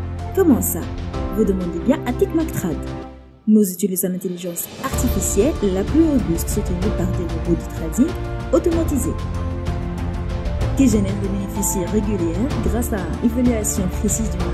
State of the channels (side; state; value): both; identical; correlation 1.00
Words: Comment ça? Vous demandez bien à TechMacTrade. Nous utilisons l'intelligence artificielle la plus robuste soutenue par des robots de trading automatisés qui génèrent des bénéfices réguliers grâce à évaluation précise du